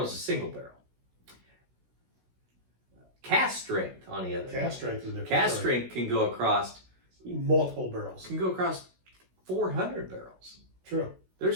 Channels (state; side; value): late; left; 16 ms